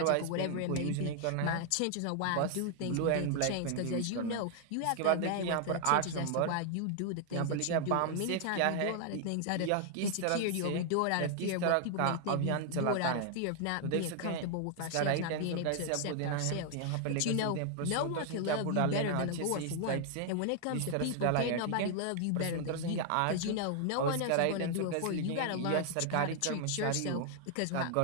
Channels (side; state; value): both; different; correlation 0.00